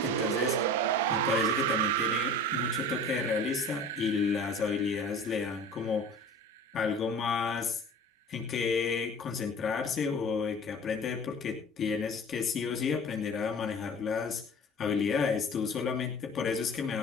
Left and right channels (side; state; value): both; normal; correlation 0.41